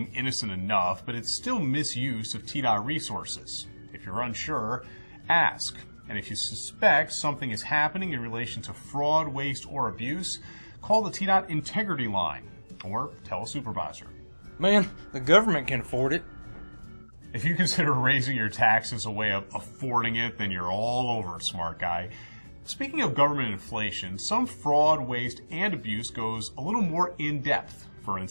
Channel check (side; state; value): both; inverted; correlation -1.00